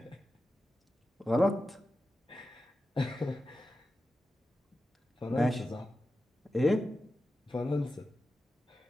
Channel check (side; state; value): both; normal; correlation 0.92